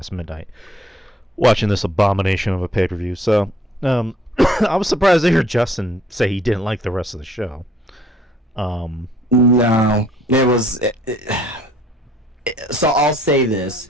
midnight watching this abomination of a pay-per-view. So I was surprised to hear Justin say he didn't like the rest of the show. No, it was. So I'll say this:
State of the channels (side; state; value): both; normal; correlation 0.61